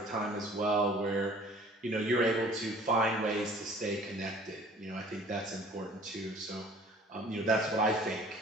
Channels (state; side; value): normal; both; correlation 0.51